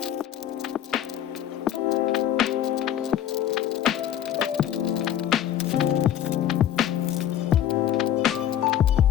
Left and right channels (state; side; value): quieter; right; 10.9 dB